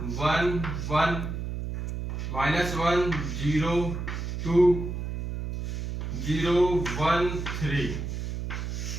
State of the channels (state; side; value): noise; right; hum, 4 dB below the sound